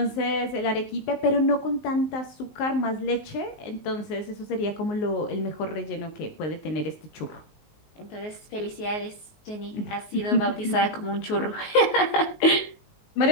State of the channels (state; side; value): late; right; 19 ms